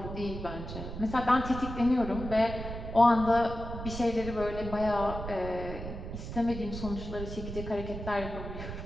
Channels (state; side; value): noise; right; rumble, 8 dB below the sound